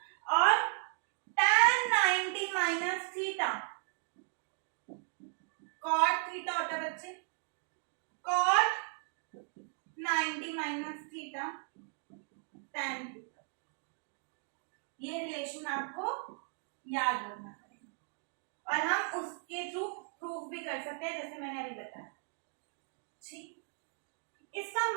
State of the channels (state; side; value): silent; left; 54 dB below the other